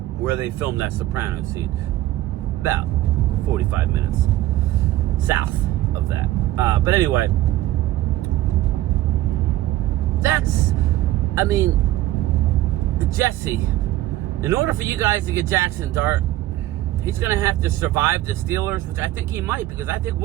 where they filmed that Soprano scene. About 45 minutes south of that. But anyway, Jesse, in order for you guys to get Jackson Dart, he's going to have to survive the Steelers, which I think he might, because I think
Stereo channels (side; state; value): left; quieter; 15.2 dB